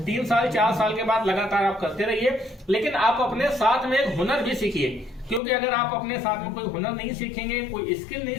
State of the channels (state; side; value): drops out; right; at 5.4 s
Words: 3 साल 4 साल के बाद लगातार आप करते रहिए, लेकिन आप अपने साथ में एक हुनर भी सीखिए, क्योंकि अगर आप अपने साथ में कोई हुनर नहीं सीखेंगे, कोई स्किल नहीं